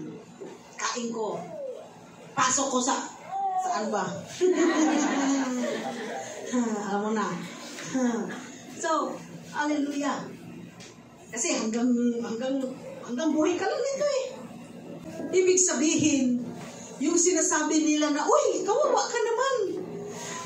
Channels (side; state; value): both; identical; correlation 1.00